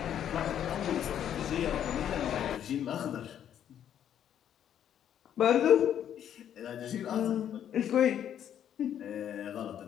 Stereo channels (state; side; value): quieter; right; 9.9 dB